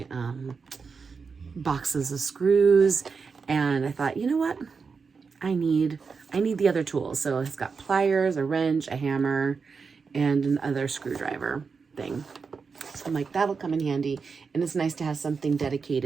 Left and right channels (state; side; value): quieter; left; 5.2 dB